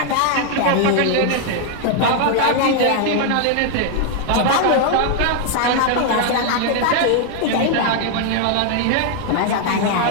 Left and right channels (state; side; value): different; both; correlation 0.00